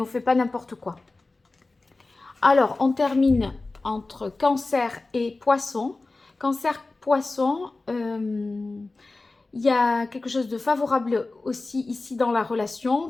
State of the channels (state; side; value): quieter; right; 3.4 dB